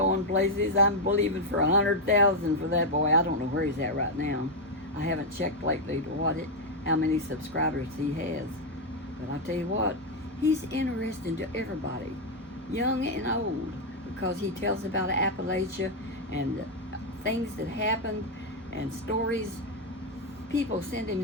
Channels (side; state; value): both; normal; correlation 0.01